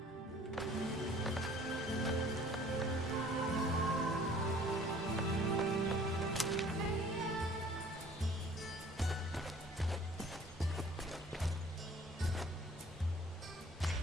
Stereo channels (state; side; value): normal; both; correlation 0.52